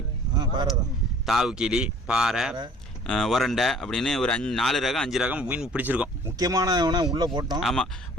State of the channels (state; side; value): normal; both; correlation 0.52